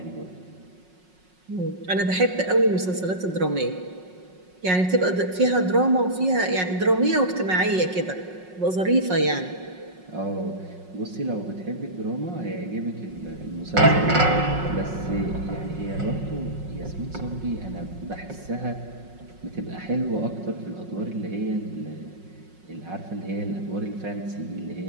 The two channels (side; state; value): left; late; 5.5 ms